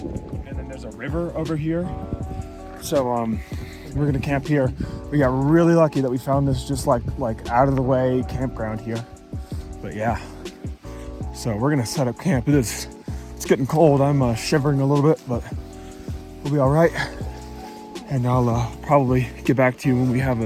and then there's a river over here. So we're gonna camp here. We got really lucky that we found this just like out of the way campground here. But yeah, so we're gonna set up camp. It's getting cold. I'm shivering a little bit, but we'll be all right. And I'll probably get back to you when we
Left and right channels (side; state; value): both; identical; correlation 1.00